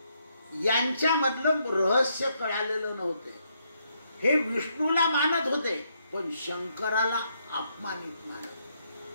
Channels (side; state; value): both; inverted; correlation -0.76